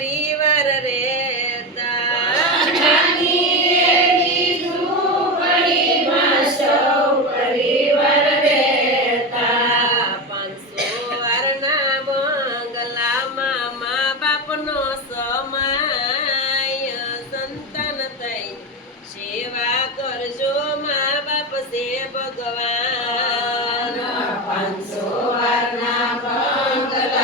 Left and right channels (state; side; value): normal; both; correlation 0.18